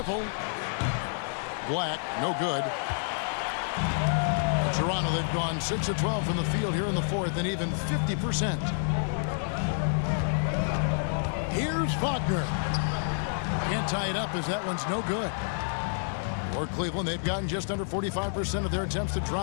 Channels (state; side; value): silent; right; digital silence